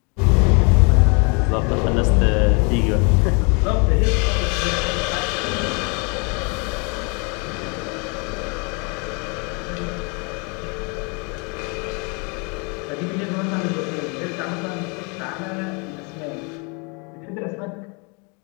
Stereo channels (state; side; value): quieter; right; 32.8 dB